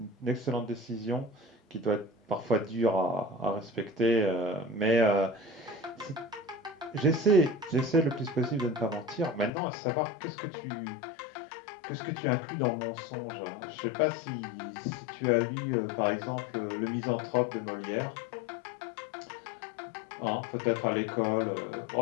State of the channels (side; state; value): right; drops out; at 9.5 s